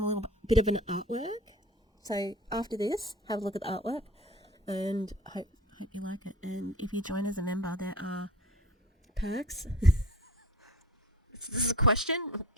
little bit of an artwork. So after this, have a look at the artwork, and hope you like it. And if you join as a member, there are perks. This is a question?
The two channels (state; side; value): normal; both; correlation 0.41